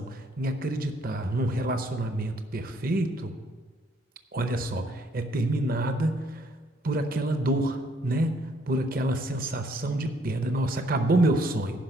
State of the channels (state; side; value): normal; both; correlation 0.66